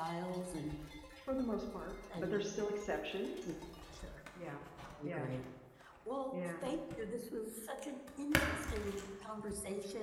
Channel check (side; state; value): both; identical; correlation 1.00